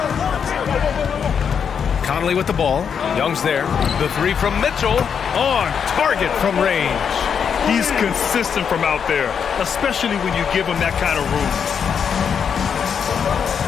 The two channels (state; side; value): quieter; right; 7.1 dB